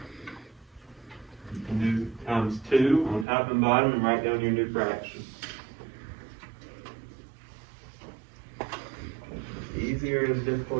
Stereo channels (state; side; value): drops out; left; at 3.2 s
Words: You can do times 2 on top and bottom and write down your new fraction. As easy or as